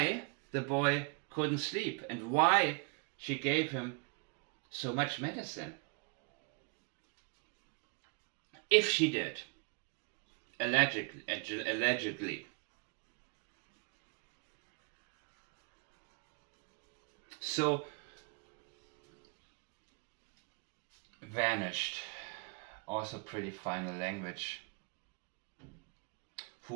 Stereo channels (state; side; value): quieter; left; 33.7 dB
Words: the boy couldn't sleep and why she gave him so much medicine? If she did, allegedly. So, vanished. Also pretty final language.